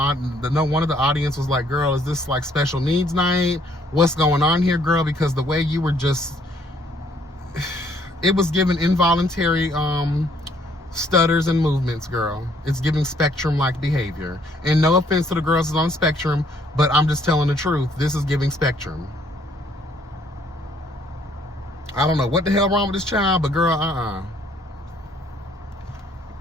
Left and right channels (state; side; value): normal; both; correlation 0.65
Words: of the audience was like, girl, is this like special needs night? What's going on here, girl? Because the way you were just, it was given involuntary stutters and movements, girl. It's giving spectrum-like behavior. And no offense to the girls that's on the spectrum, but I'm just telling the truth. This is giving spectrum. I don't know what the hell wrong with this child, but girl,